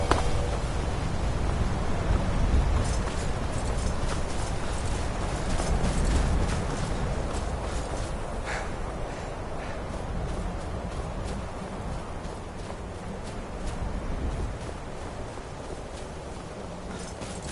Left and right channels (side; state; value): both; identical; correlation 1.00